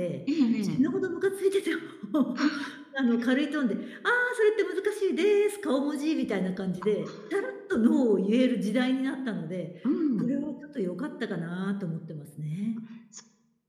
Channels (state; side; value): identical; both; correlation 1.00